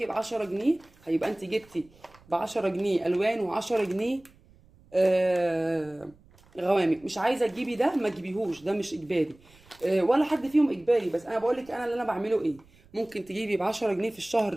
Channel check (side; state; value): right; noise; rumble, 28 dB below the sound